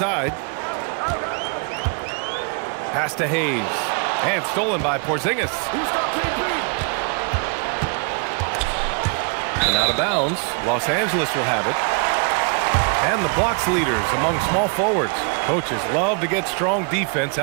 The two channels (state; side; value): quieter; left; 37.6 dB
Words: Pass to Hayes. And stolen by Porzingis. And out of bounds. Los Angeles will have it. And the blocks leaders among small forwards. Coaches love to get strong defense